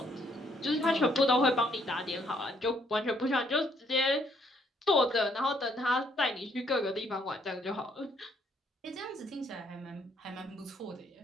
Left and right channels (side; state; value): both; normal; correlation 0.69